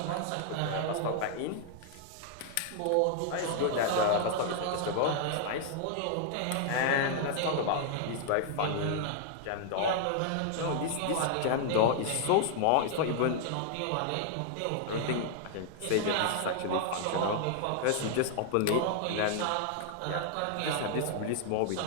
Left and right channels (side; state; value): both; different; correlation 0.00